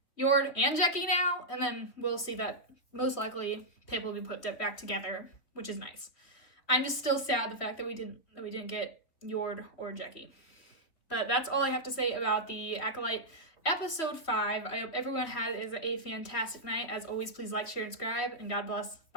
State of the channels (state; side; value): late; right; 3.3 ms